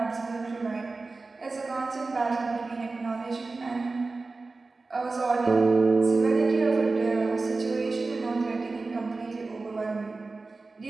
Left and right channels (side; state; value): left; quieter; 3.7 dB